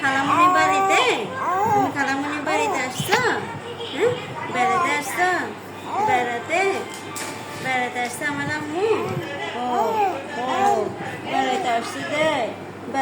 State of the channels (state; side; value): identical; both; correlation 1.00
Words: খালামণির বাড়িতে? তুমি খালামণির বাড়িতে আসছো? হ্যাঁ, বেড়াতে আসছো? বেড়াতে? বেড়াতে আসছে আমার আম্মু? ও, ও, বেড়াতে আসছি যে?